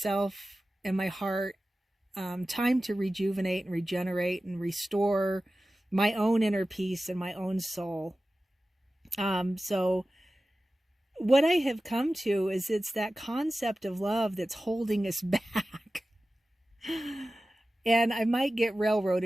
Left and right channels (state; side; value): normal; both; correlation 0.95